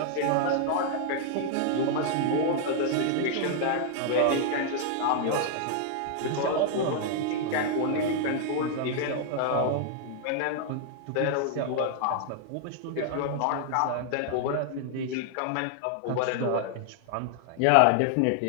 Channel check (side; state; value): both; different; correlation 0.00